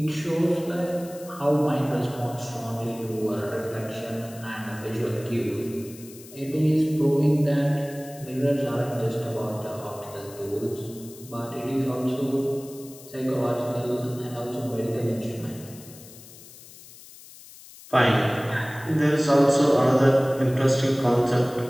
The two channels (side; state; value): left; noise; hiss, 19 dB below the sound